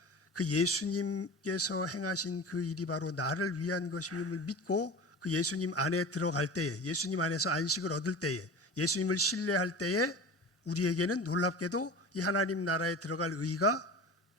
그 예수님께서 행하신 그 일이 바로 나를 위한 것임을 믿고 그 예수님 안에 들어갈 때에, 예수님 안에서 안식을 얻을 때에, 예수님을 신뢰할 때에 우리에게는 놀랍게도 이 하나님 나라에 들어갈 의가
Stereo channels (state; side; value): normal; both; correlation 0.34